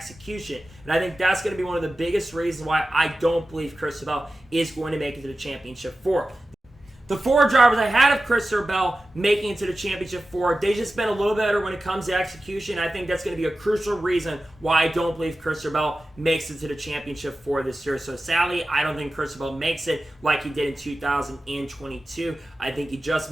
And I think that's going to be one of the biggest reasons why I don't believe Bell is going to make it to the Championship 4. The 4 drivers I had of Bell making it to the Championship 4, they just been a little better when it comes to execution. I think that's going to be a crucial reason why I don't believe Bell makes it to the Championship 4 this year. So sadly, I don't think Bell makes it like he did in 2022. I think he just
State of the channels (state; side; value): normal; both; correlation 0.94